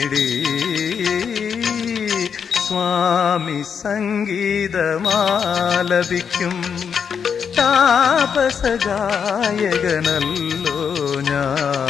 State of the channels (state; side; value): quieter; right; 6.9 dB